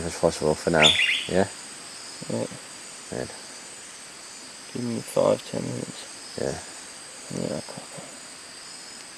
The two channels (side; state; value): both; identical; correlation 1.00